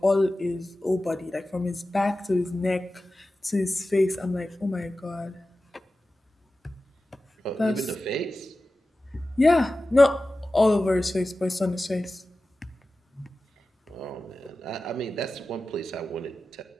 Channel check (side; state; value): both; normal; correlation 0.95